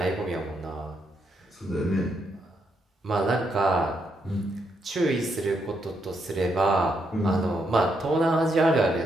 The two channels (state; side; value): normal; both; correlation 0.78